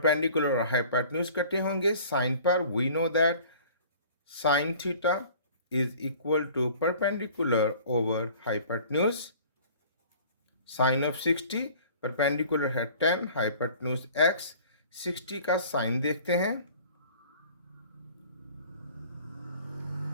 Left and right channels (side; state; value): both; inverted; correlation -0.48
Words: और हाइपोटेन्यूज कटे होंगे साइन पर। We know that sine theta is equal to perpendicular over hypotenuse. Sine of 60, perpendicular है 10, हाइपोटेन्यूज x। 60 का साइन देखते हैं।